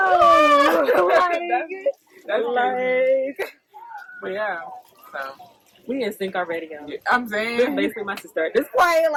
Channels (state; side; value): identical; both; correlation 1.00